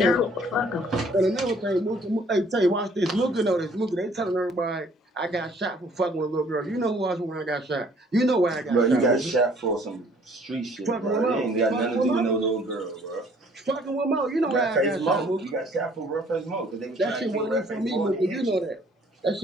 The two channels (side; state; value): both; normal; correlation 0.59